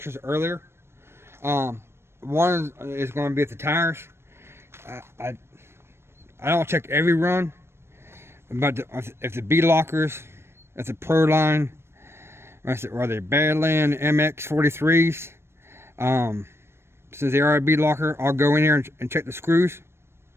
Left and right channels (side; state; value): left; late; 0.12 ms